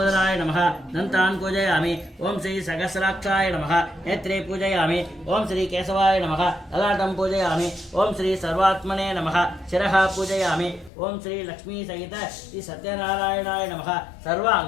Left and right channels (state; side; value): drops out; right; at 10.9 s